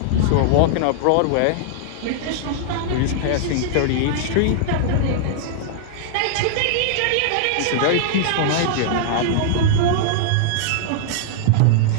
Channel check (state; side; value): different; both; correlation -0.01